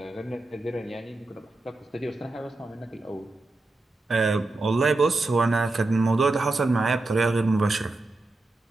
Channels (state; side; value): quieter; left; 3.1 dB